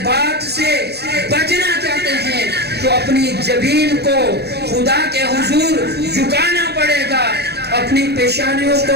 بات سے بچنا چاہتے ہیں تو اپنی جبین کو خدا کے حضور جھکانا پڑے گا، اپنی پیشانیوں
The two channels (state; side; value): late; left; 0.48 ms